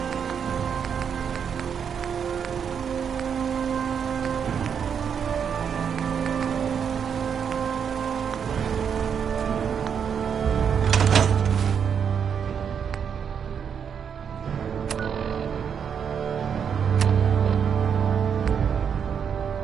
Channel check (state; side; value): quieter; left; 7.4 dB